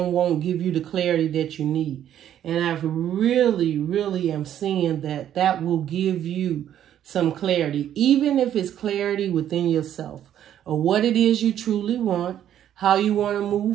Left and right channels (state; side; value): quieter; left; 10.7 dB